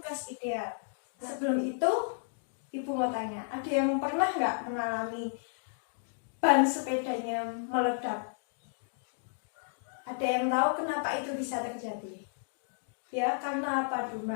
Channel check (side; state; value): right; silent; digital silence